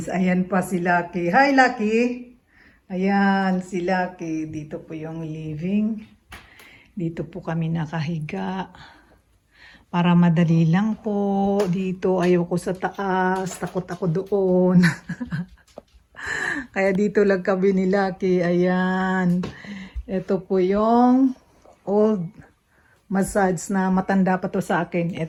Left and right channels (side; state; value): both; identical; correlation 1.00